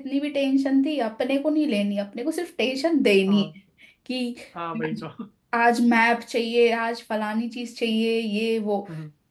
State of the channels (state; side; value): identical; both; correlation 1.00